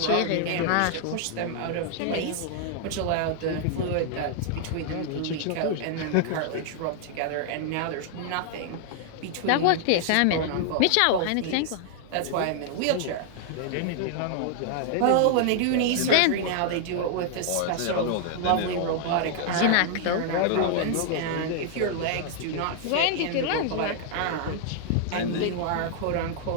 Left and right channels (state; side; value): different; both; correlation -0.01